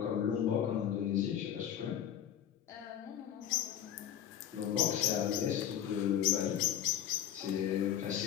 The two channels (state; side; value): quieter; right; 10.2 dB